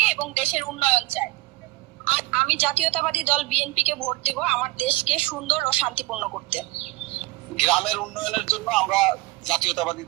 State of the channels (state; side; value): quieter; left; 20.6 dB